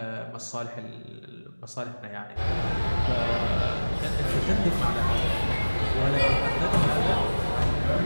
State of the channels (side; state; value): both; inverted; correlation -1.00